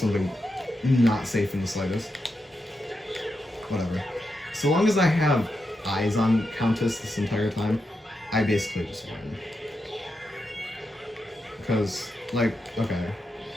not safe in the slightest. Whatever. So long as I have eyes on Countess this entire time, I basically just win. Because, like, okay.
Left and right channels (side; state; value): both; normal; correlation 0.86